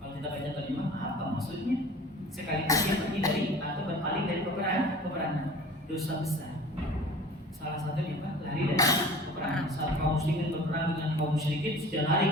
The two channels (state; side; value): normal; both; correlation 0.42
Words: kita baca terjemah apa maksudnya? Sekalipun dia pergi dari atau berpaling dari peperangan, dosa besar. Salah satunya Pak, lari dari peperangan. Saat kaum muslimin berperang dengan kaum musyrikin, sudah lari